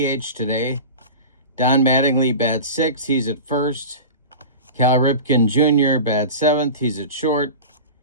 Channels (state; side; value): inverted; both; correlation -0.31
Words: DH today. Don Mattingly bats sixth. He's at first. Cal Ripken Jr. bats seventh. He's at short.